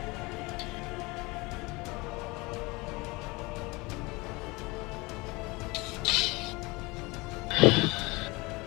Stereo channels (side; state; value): right; quieter; 24.3 dB